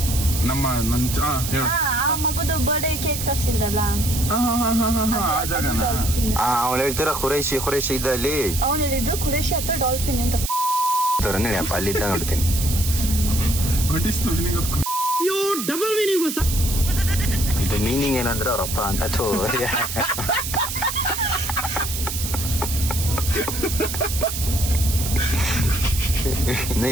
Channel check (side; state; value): right; noise; hiss, 5 dB below the sound